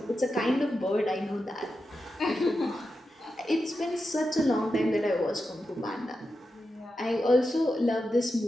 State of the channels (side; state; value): both; normal; correlation 0.89